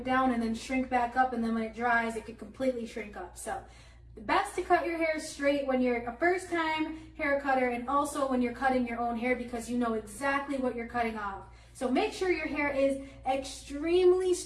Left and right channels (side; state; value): both; identical; correlation 1.00